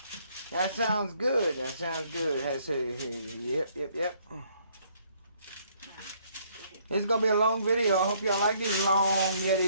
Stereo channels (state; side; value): inverted; both; correlation -0.66